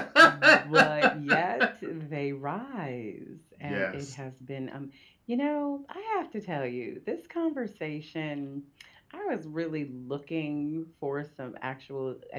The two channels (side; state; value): both; identical; correlation 1.00